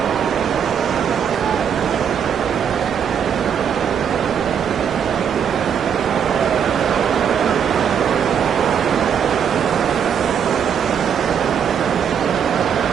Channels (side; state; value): left; quieter; 7.8 dB